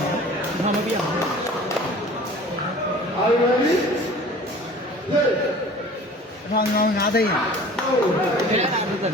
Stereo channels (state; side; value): normal; both; correlation 0.45